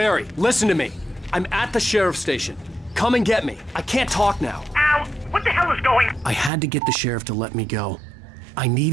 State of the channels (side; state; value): left; drops out; at 6.5 s